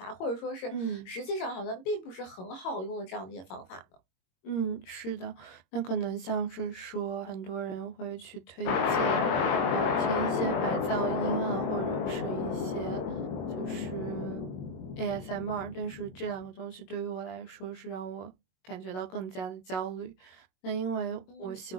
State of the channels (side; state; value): right; late; 22 ms